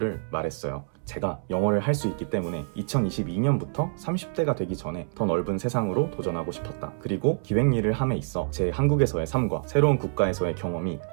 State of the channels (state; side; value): silent; left; 60 dB below the other